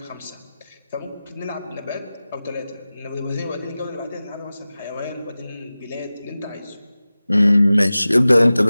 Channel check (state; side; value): inverted; both; correlation -0.96